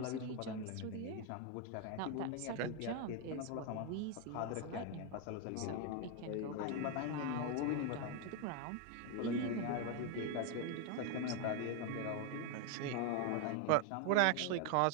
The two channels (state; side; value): different; both; correlation 0.01